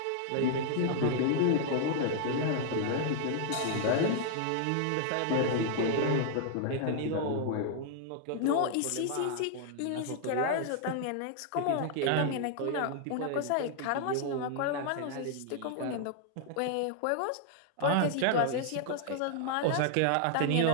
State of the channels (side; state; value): both; different; correlation 0.00